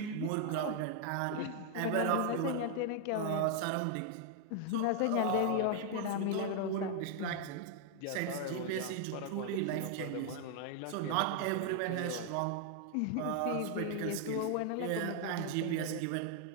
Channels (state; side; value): different; both; correlation 0.00